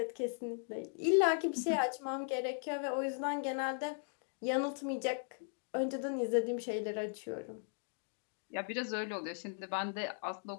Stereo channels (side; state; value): right; silent; digital silence